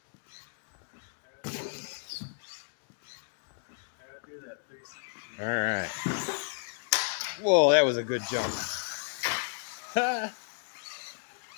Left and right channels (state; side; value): silent; right; digital silence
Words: All right. Whoa, that was a good jump.